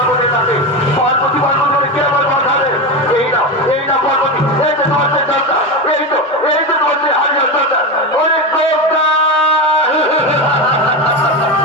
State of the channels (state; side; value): normal; both; correlation 0.17